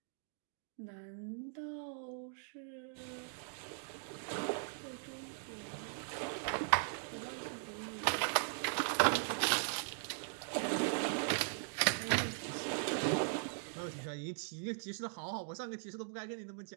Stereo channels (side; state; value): left; silent; digital silence